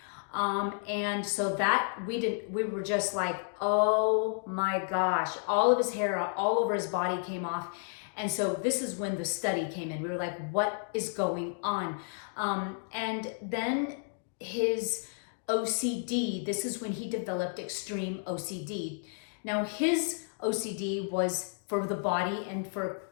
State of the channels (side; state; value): right; silent; 57 dB below the other